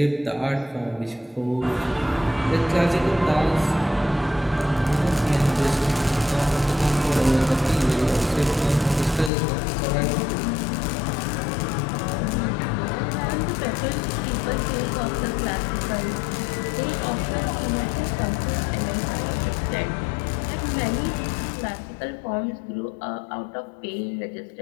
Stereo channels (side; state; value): right; drops out; at 9.3 s